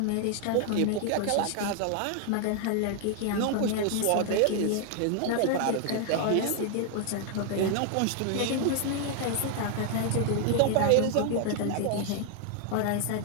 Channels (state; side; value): different; both; correlation 0.00